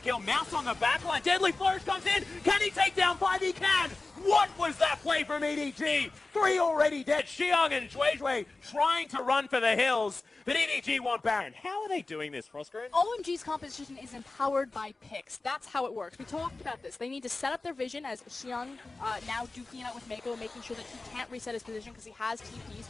Mouse on the backline. Deadly Flourish comes in. Can he take down 5? He can! What was that play from EDG? 3 already dead. Xiang and Zhuizhui trying to run for the hills, but EDG want Baron. How are they doing this, Frostgreen? OMG's composition is empowered by picks. That's how it works. We talked about this. They need to set up their vision as Xiang now duking it out with Mako, making sure that he can't reset his position because he has TP,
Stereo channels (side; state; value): right; quieter; 3.4 dB